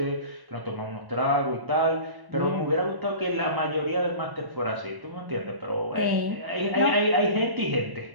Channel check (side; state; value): left; late; 1.1 ms